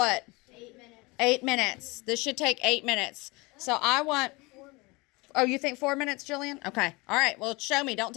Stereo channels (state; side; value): quieter; right; 25.2 dB